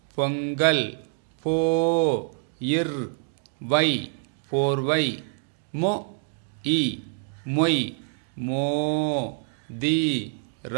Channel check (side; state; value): left; silent; 61 dB below the other